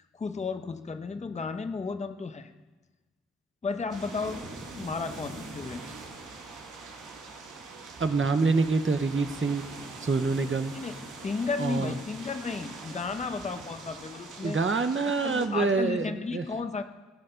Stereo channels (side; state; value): both; normal; correlation 0.63